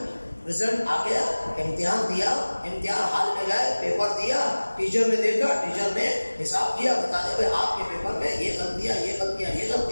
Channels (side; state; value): both; inverted; correlation -1.00